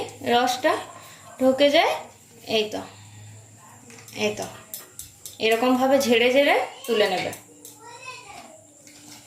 রসটা ঢুকে যায়। এই তো এরকম ভাবে ঝেড়ে ঝেড়ে তুলে নেবে।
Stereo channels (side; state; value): both; identical; correlation 1.00